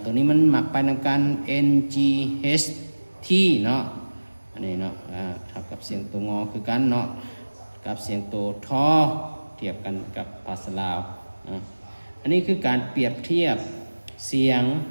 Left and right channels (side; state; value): both; inverted; correlation -1.00